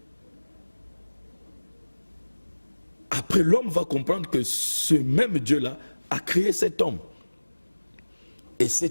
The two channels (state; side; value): inverted; both; correlation -1.00